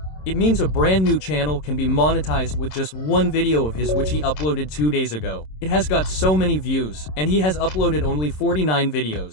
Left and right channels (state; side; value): late; right; 27 ms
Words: It means a brand new channel can be monetized with just one video of his which he uploaded 2 days ago. It has got so many views, and he has uploaded only 49